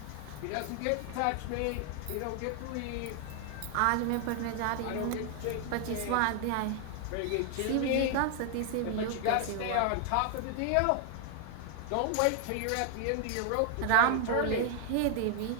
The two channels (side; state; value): both; different; correlation 0.00